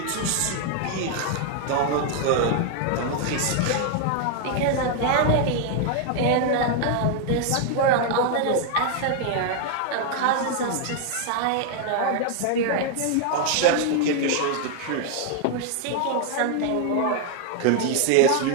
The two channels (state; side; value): different; both; correlation 0.00